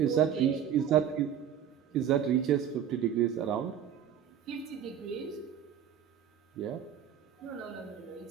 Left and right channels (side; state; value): left; quieter; 9.1 dB